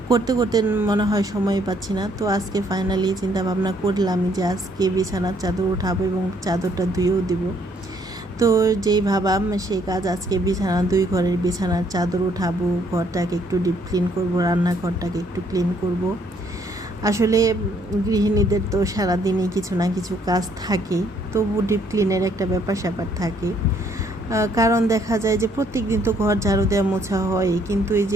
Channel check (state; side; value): normal; both; correlation 0.67